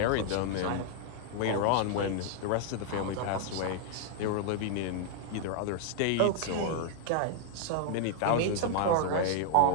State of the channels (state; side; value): different; both; correlation -0.01